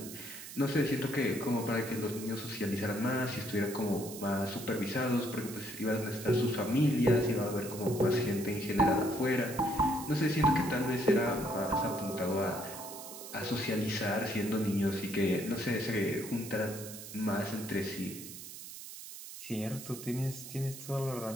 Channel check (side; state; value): right; noise; hiss, 12 dB below the sound